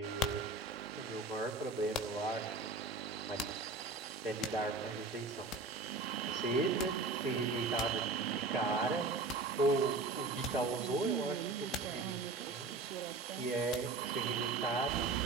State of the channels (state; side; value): quieter; left; 3.6 dB